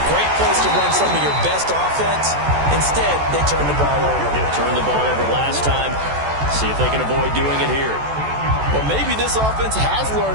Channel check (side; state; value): left; late; 14 ms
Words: great place to run some of your best offense. Instead, they turn the ball over. They turned the ball over last time. See if they can avoid doing it here. Well, maybe this offense has